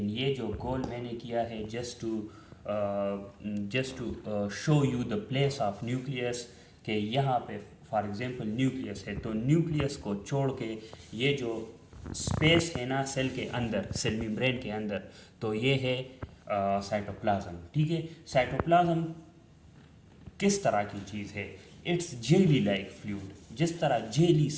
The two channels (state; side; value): identical; both; correlation 1.00